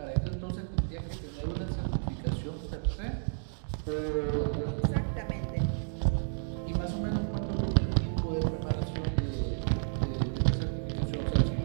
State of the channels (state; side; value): silent; left; digital silence